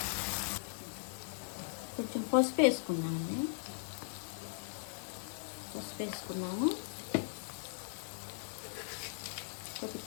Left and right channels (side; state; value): right; silent; 52 dB below the other